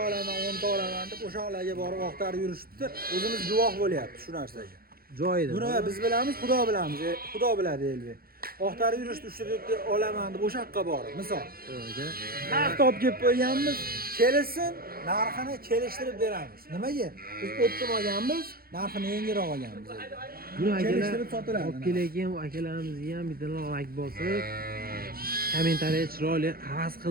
olaman, 10 ta olaman deb o'shalarga borib oqtarib yurishdi. O'zimiz guvoh bo'lyapti shu narsaga. Joyida. Buni biz bilamiz, Xudo bilamiz. Xudo biladi Elbek. Oqtarib yurishdi 3 ta 4 ta olaman deb o'sha yoqqa borib, misol. Narx topib kelib qo'yganmiz, kelsin, narxini kelishtirib beramiz. Nimaga? Biz optim olganmiz, narxini yengilroq olganmiz. Buni kelishtirib sotiladi. Olib kelgan akalarimizga ham bitta like bosib, kommentariya chiroyli havas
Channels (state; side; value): late; left; 0.44 ms